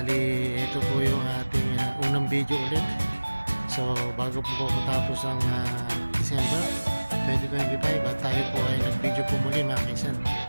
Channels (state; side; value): inverted; both; correlation -1.00